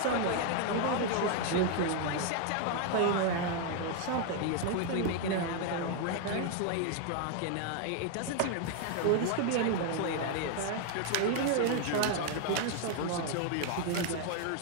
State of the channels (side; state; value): both; different; correlation 0.00